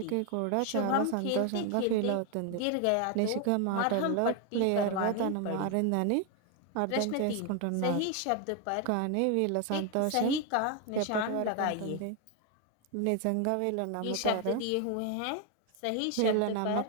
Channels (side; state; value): both; different; correlation 0.01